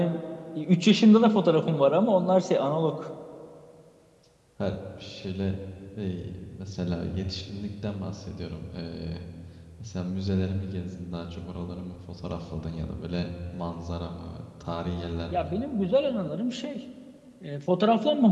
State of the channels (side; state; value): both; identical; correlation 1.00